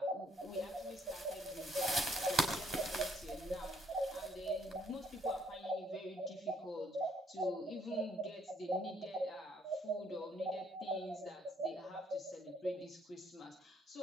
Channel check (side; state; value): both; normal; correlation 0.67